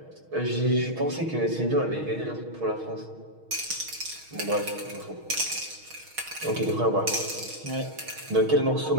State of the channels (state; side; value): late; left; 6.4 ms